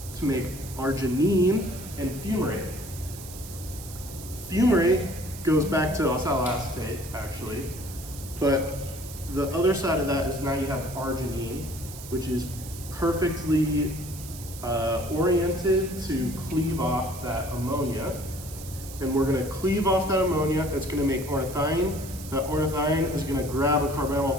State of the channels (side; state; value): right; noise; hiss, 14 dB below the sound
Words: to make arginine and fumarate. Fumarate goes back to oxaloacetate, actually, but the other side of that is now you have arginine, which is perfectly oriented to cleave off that ammonia. And we're gonna cleave off that ammonia, it's gonna make ornithine. That ornithine is gonna grab a carbonyl